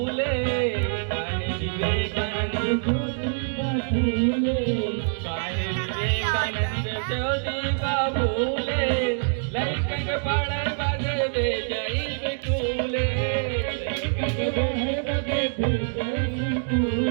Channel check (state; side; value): silent; left; digital silence